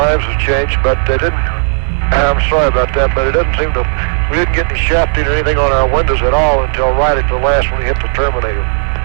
have changed, but they didn't, I'm sorry about that, but it doesn't seem to, we didn't get any shafting or anything on our windows at all until right at the last when we hit the terminator.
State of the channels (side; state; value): left; silent; digital silence